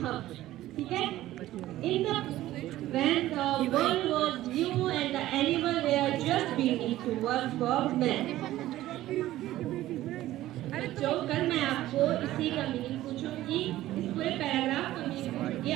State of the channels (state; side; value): quieter; left; 15.0 dB